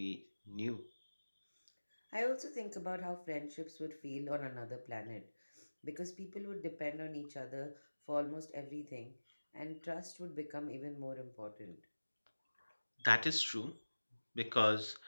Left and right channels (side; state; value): both; inverted; correlation -1.00